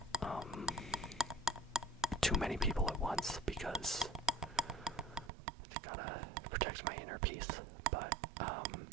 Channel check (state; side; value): drops out; left; at 5.3 s